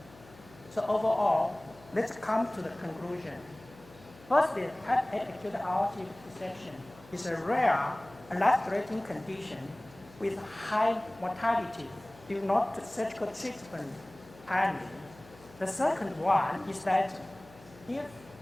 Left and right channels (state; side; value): noise; left; hum, 22 dB below the sound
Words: So overall, let's come to the conclusion. Firstly, type A acute aortic dissection is a rare and life-threatening condition with high mortality if not surgical treatment timely. The second one is that if